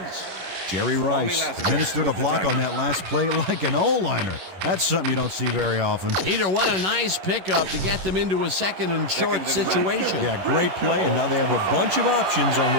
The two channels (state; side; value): late; left; 11 ms